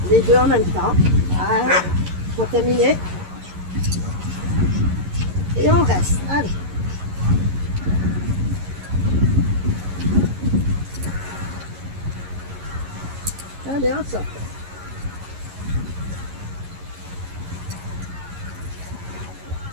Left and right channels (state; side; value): late; left; 11 ms